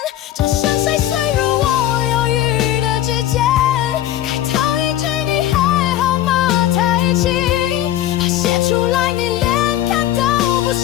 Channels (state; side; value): quieter; right; 12.7 dB